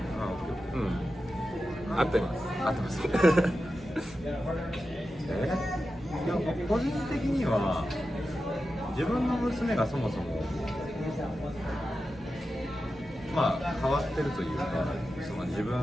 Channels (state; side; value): normal; both; correlation 0.91